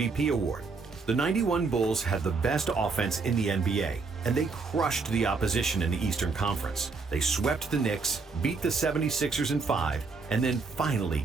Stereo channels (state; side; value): quieter; left; 4.4 dB